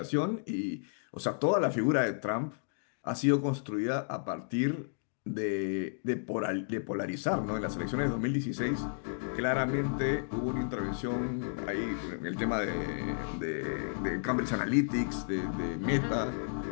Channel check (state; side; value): silent; right; digital silence